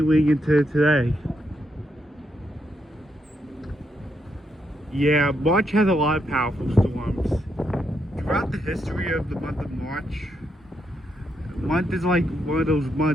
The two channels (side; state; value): both; normal; correlation 0.79